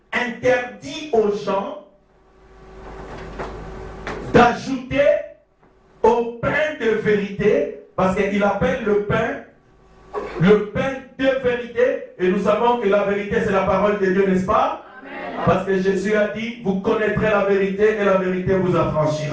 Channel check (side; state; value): both; identical; correlation 1.00